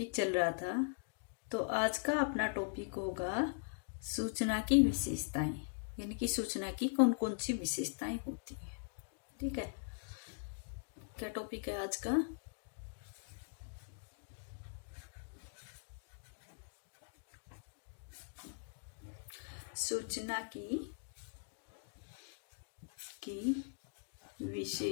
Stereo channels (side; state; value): right; silent; digital silence